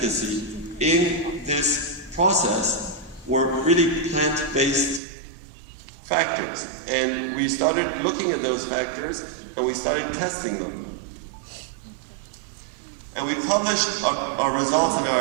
in this process were really plant-based factors. And we started looking at those factors, and we started testing them. And we published our results and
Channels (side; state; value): left; drops out; at 5.0 s